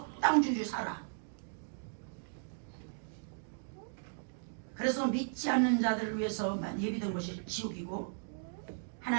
살아. 그래서 믿지 않는 자들을 위해서만 예비된 것이 지옥이고,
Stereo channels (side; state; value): left; silent; digital silence